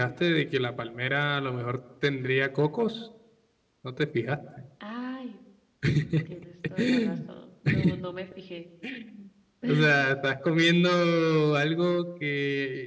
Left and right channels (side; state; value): both; identical; correlation 1.00